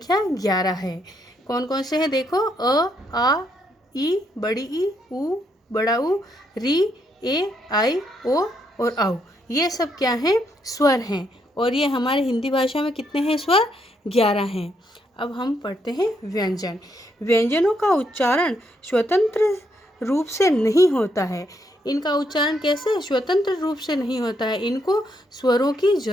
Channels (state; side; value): normal; both; correlation 0.76